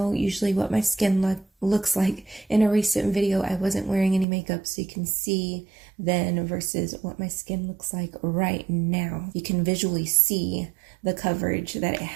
usually what my skin looks like. In a recent video, I wasn't wearing any makeup, so you can see then versus what my skin looks like right now. You can visually see the coverage that it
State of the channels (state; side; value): drops out; left; at 4.2 s